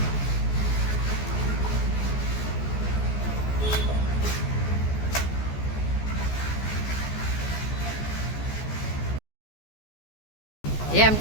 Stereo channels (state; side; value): late; right; 14 ms